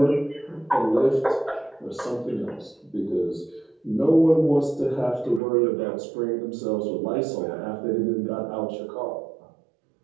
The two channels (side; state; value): left; drops out; at 5.4 s